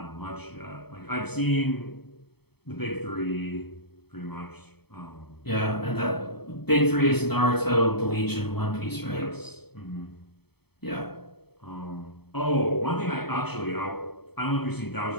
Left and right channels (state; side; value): late; right; 0.97 ms